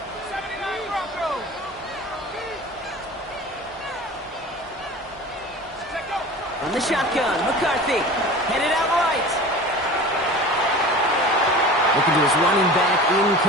From the shotgun, McCarthy headed out right. Looking to his running back,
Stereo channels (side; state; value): both; normal; correlation 0.37